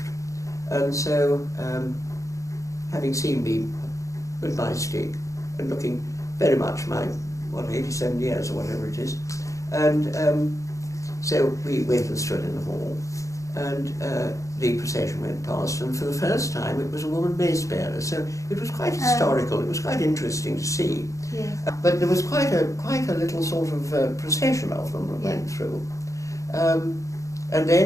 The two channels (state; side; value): late; right; 0.15 ms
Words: And so, having seen me with my stick and looking very much my, 87 years or whatever it is, and so we went and stood in the hall, and the procession went past, and for the first time it was a woman mace bearer, so it was quite historical, it was quite interesting to see. Yes. But there was quite a little sort of procession of them that went through. And